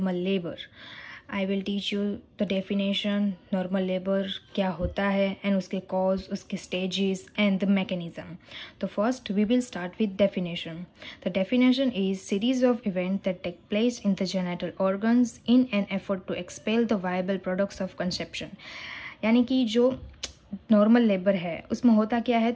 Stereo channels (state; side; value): identical; both; correlation 1.00